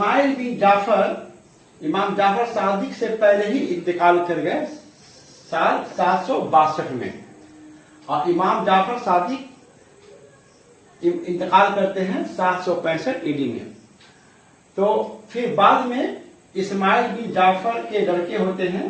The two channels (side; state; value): both; identical; correlation 1.00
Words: बिन जाफर इमाम जाफर सादिक से पहले ही इंतकाल कर गए साल 762 में, और इमाम जाफर सादिक इंतकाल करते हैं 765 ईडी में। तो फिर बाद में इस्माइल बिन जाफर के लड़के होते